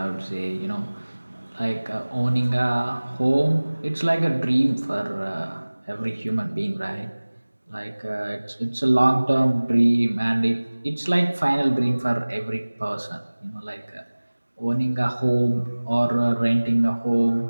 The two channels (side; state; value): both; inverted; correlation -1.00